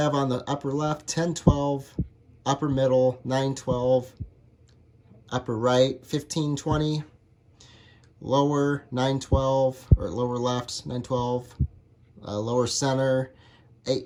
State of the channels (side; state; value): both; identical; correlation 1.00